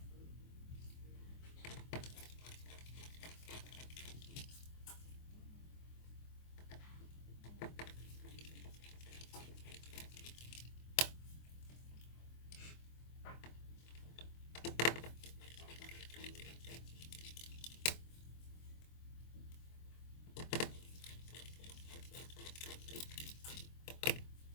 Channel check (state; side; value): late; right; 24 ms